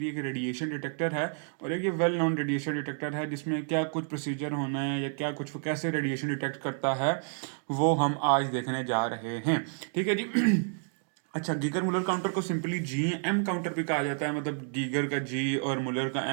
एक रेडिएशन डिटेक्टर है और एक ये वेल नोन रेडिएशन डिटेक्टर है जिसमें क्या कुछ प्रोसीजर होना है या क्या कुछ कैसे रेडिएशन डिटेक्ट करता है वो हम आज देखने जा रहे हैं। ठीक है जी। अच्छा, गीगर मुलर काउंटर को सिंपली जी एम काउंटर भी कहा जाता है, मतलब गीगर का जी और मुलर का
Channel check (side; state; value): left; silent; 58 dB below the other